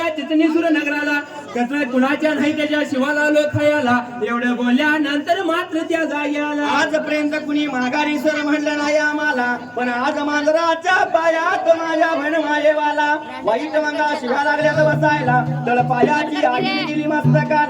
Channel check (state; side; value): identical; both; correlation 1.00